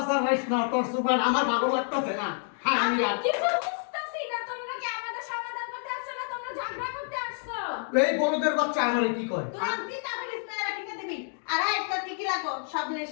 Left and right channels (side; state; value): right; silent; 57 dB below the other